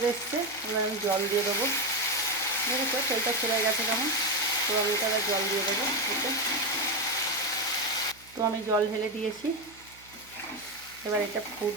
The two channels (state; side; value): noise; right; hum, 25 dB below the sound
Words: এসছে, এবার আমি জল দিয়ে দেবো। দেখেছো তেলটা ছেড়ে গেছে কেমন? তো আমি এটা জল দিয়ে দেবো এতে। তো আমি জল ঢেলে দিয়েছি, এবার এটা